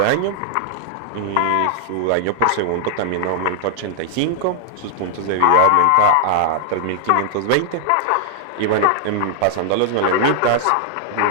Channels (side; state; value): both; different; correlation 0.00